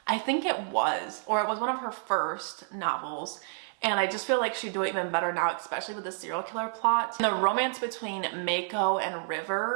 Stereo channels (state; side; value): silent; left; digital silence